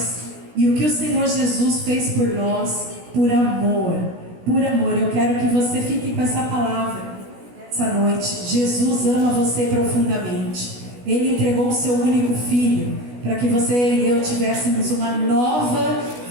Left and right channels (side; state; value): left; late; 16 ms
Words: e o que o Senhor Jesus fez por nós, por amor. Por amor. Eu quero que você fique com essa palavra essa noite. Jesus ama você profundamente. Ele entregou o seu único filho para que você e eu tivéssemos uma nova